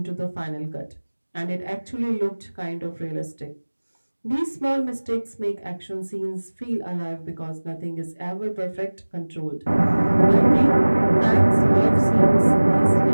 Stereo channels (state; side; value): inverted; both; correlation -1.00